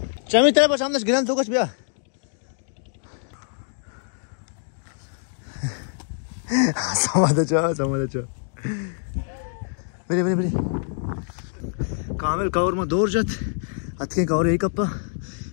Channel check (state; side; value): silent; right; digital silence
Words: चमी तेरे पर सामने गिरन तो कुछ बिया समाधा चो बरे कामेल कावर में दौर जात अतके कावर एक कप्पा